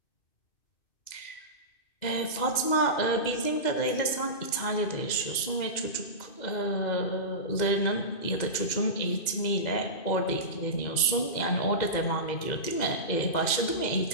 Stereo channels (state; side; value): late; right; 2.1 ms